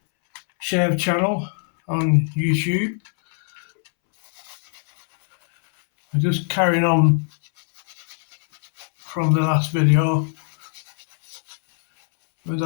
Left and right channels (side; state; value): right; silent; 64 dB below the other